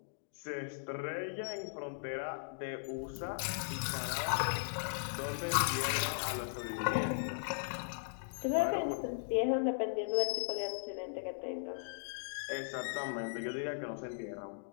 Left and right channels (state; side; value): silent; right; digital silence